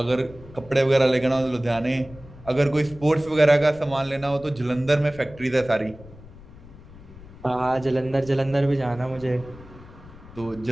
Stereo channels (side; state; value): left; noise; rumble, 19 dB below the sound